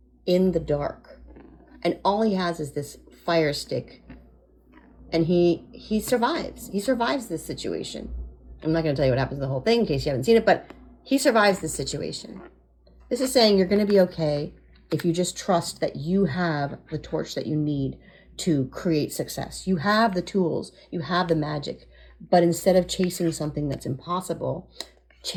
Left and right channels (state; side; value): identical; both; correlation 1.00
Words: in the dark. And all he has is this fire stick. And he survives. He survives this situation. I'm not going to tell you what happens in the whole thing in case you haven't seen it, but he survives this situation. This is saying you're going to be okay if you just trust that you have the torch that you need to create success. You have the tools. You have the magic. But instead of chasing something that's impossible,